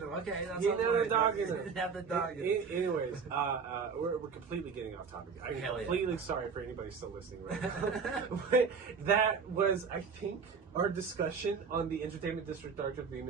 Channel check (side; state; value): left; quieter; 5.6 dB